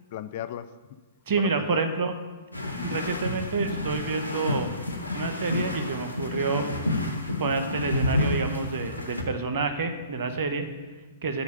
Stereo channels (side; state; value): both; inverted; correlation -0.51